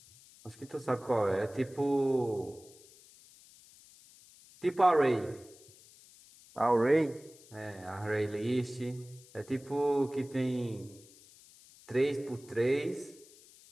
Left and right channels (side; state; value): left; noise; hiss, 24 dB below the sound